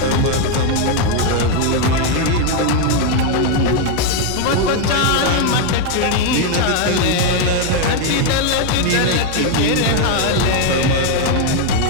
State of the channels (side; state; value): both; different; correlation 0.01